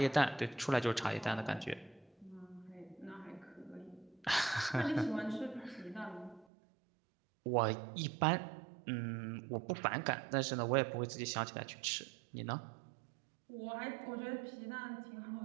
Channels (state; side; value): drops out; left; at 6.5 s